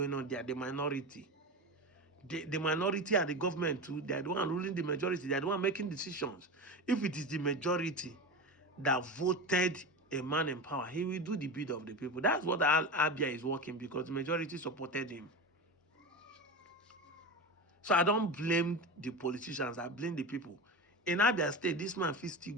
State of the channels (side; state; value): both; normal; correlation 0.23